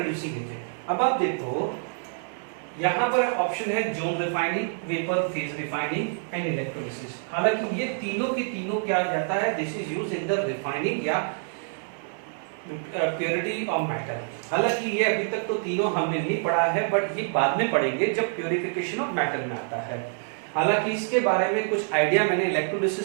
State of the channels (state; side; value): silent; left; digital silence